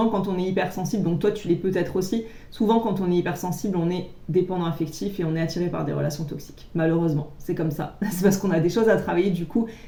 quand on est hypersensible, donc toi tu l'es peut-être aussi, souvent quand on est hypersensible, on est dépendant affectif et on est attiré par des relations toxiques. Malheureusement, c'est comme ça. C'est parce qu'on a des choses à travailler du coup.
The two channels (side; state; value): both; identical; correlation 1.00